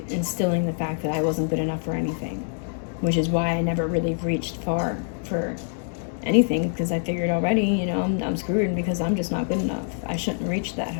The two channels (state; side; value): silent; right; digital silence